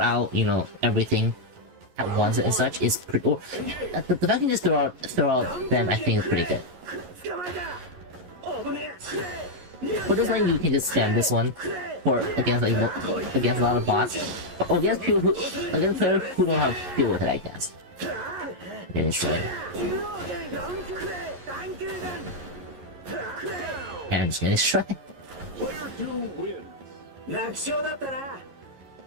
out everything at once and such is pretty. Or, the fact you can just throw out them, I think is pretty good. For this one, you can just spam this one against a lot of bots, or against players who don't have to deal with it, I guess. Then it's right. And I'm just gonna try. two wins.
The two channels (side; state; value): left; late; 11 ms